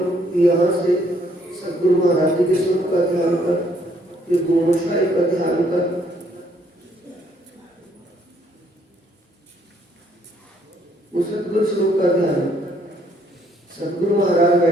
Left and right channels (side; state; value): both; normal; correlation 0.67